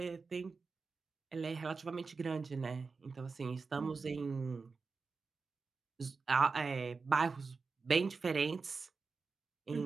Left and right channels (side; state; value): left; quieter; 4.5 dB